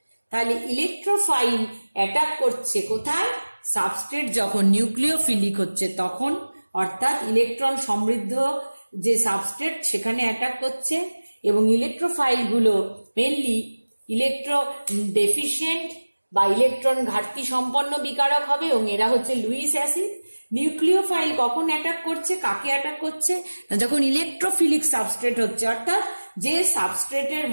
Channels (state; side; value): inverted; both; correlation -1.00